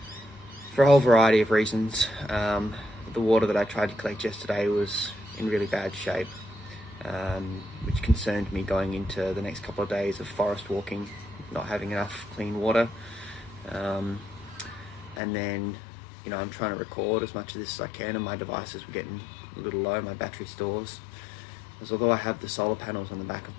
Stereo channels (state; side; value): drops out; right; at 15.2 s